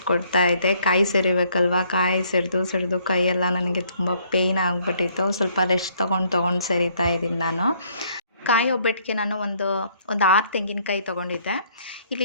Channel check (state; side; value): inverted; both; correlation -0.65